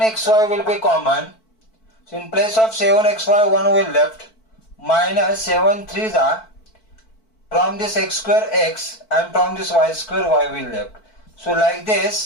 will be common. So in place of 7xy 1 will left. Minus 7 3s are from this x square x and from this y square y will left. So like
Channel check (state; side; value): late; right; 4.5 ms